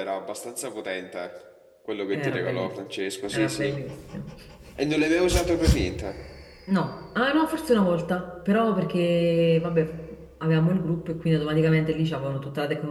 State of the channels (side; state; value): both; identical; correlation 1.00